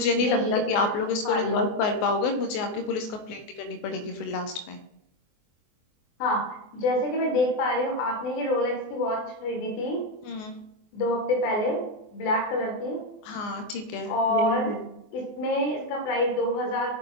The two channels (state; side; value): late; right; 24 ms